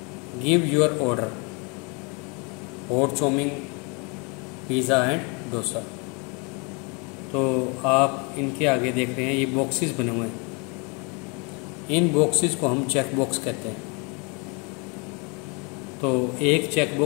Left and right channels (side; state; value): right; quieter; 32.0 dB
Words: Give your order, hot chowmein, pizza and dosa. तो आप इनके आगे देख रहे हैं ये बॉक्सेस बने हुए हैं। इन बॉक्सेस को हम चेक बॉक्स कहते हैं। तो एक चेक